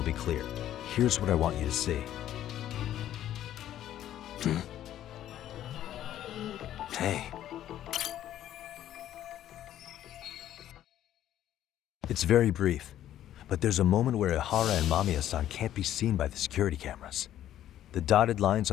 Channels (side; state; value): right; quieter; 12.0 dB